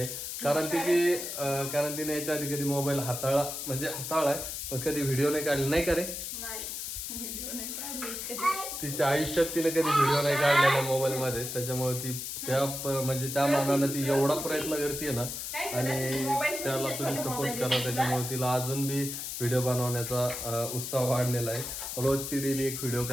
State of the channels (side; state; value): left; noise; hiss, 6 dB below the sound